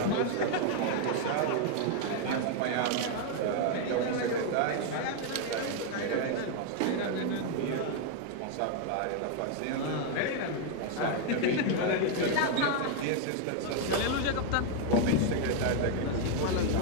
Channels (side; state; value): both; different; correlation 0.00